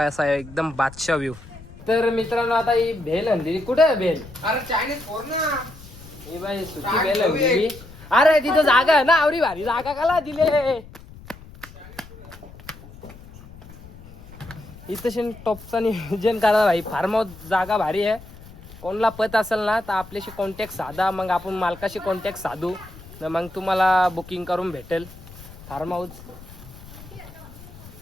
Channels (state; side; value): noise; left; rumble, 18 dB below the sound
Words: असा आहे एकदम बादशाह व्ह्यू तर मित्रांनो आता ही भेल आणली कुठे आहे भेल अरे चायनीज फोर ना ही बाई सुकी भेल आणली अरे तिथं जागा आहे ना आवरी भारी जागा काला दिले इथं टॉपचा नियोजन करा भाई फार्म हाऊस जागा भारी आहे कोणला पत असेल ना तर आपल्याशी कॉन्टॅक्ट साधा मग आपण मालकाशी कॉन्टॅक्ट साधू मग तुम्हाला बुकिंग करून भेटेल फार्म हाऊस